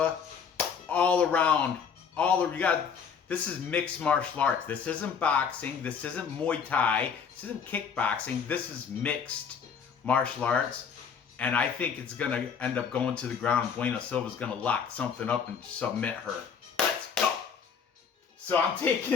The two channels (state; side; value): quieter; right; 6.6 dB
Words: all around, this is mixed martial arts. This isn't boxing. This isn't Muay Thai. This isn't kickboxing. This is mixed martial arts. And I think it's going to end up going to the ground. Bueno Silva's going to lock something up and submit her. Let's go. So I'm